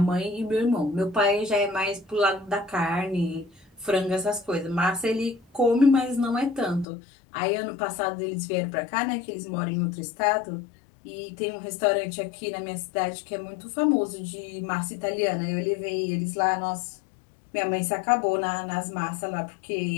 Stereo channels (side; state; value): right; drops out; at 6.9 s